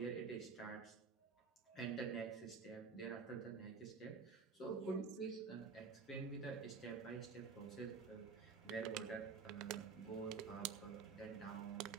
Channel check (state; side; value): quieter; left; 5.4 dB